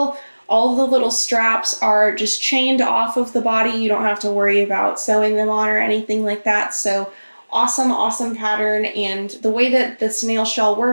All the little straps are just chained off of the body. You don't have to worry about sewing them on or anything like that. So awesome, awesome pattern. And the way that the snail shell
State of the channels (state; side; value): inverted; both; correlation -1.00